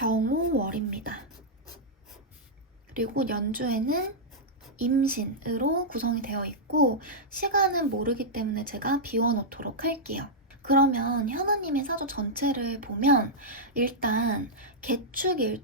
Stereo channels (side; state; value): both; normal; correlation -0.08